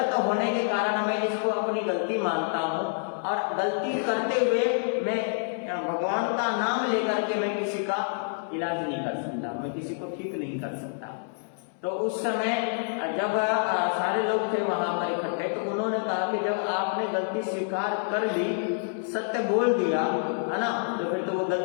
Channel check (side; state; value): right; silent; 60 dB below the other